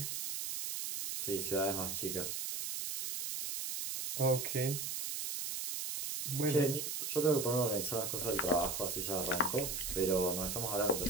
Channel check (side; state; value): right; noise; hiss, 3 dB below the sound